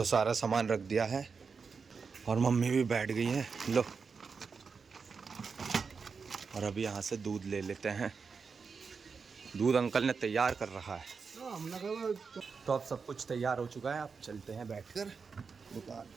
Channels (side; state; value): left; quieter; 5.3 dB